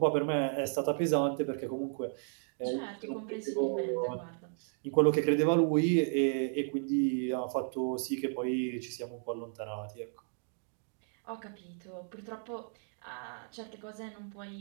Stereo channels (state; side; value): silent; left; 55 dB below the other